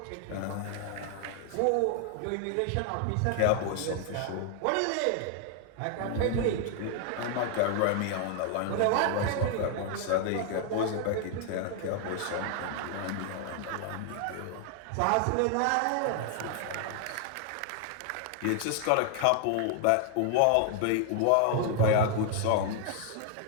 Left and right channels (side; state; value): both; different; correlation 0.00